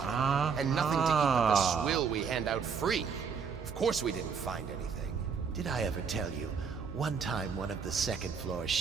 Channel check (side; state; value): left; quieter; 6.0 dB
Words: And nothing to keep up the swill we hand out free. Of course we didn't find anything. Did I ever tell you, one time one of the second floor